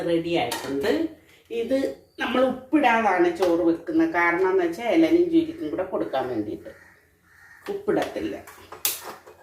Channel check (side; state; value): both; identical; correlation 1.00